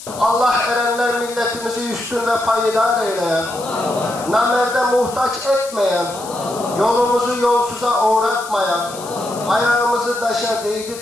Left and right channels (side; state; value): left; noise; hiss, 14 dB below the sound